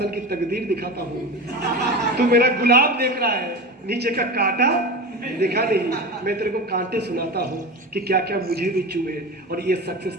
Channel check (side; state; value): both; normal; correlation 0.27